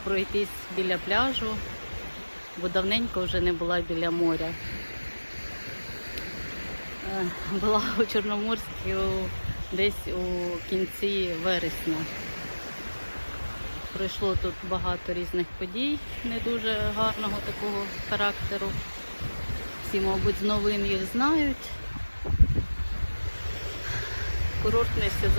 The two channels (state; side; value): inverted; both; correlation -1.00